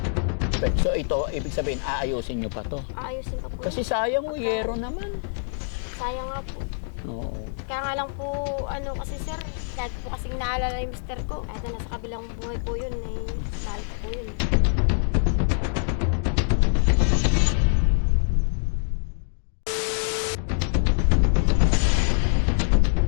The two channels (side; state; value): right; silent; digital silence